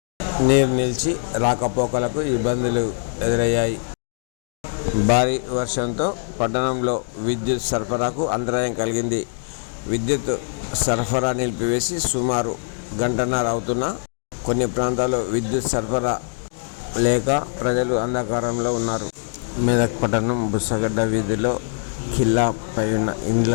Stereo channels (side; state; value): right; silent; digital silence